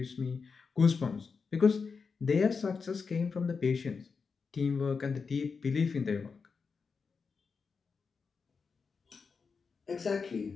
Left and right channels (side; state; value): right; quieter; 5.2 dB